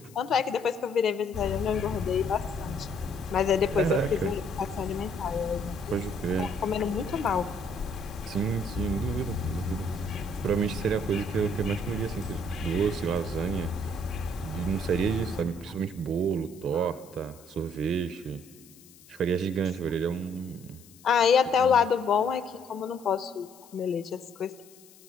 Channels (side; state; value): left; noise; hiss, 24 dB below the sound